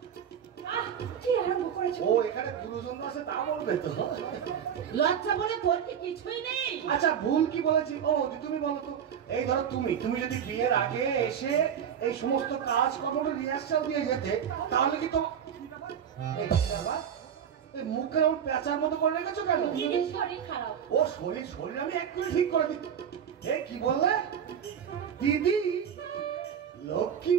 কি আরম্ভ করেছো? ও এখানে গুরুজন আছে, তা বলবে তো। লজ্জা বলে তোর কি কিছুই নেই? আচ্ছা, ভুল কি বলেছি? ও তুমি বলো তো। এই ধরো তুমি যদি বিয়ের আগে এসে এই সমস্ত কাজ কর্ম রিহার্সাল দিয়ে যেতে, তাহলে কি তো এই মুখে এমন পেঁচার মতো করে রেখেছো কেন? দিদির শরীর খারাপ। ও শরীর আমি এক্ষুনি ঠিক করে দিই। এ কি বললে দিদি? লক্ষ্মী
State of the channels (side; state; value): left; quieter; 8.4 dB